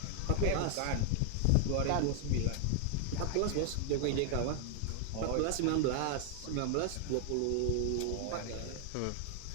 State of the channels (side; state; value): both; different; correlation 0.00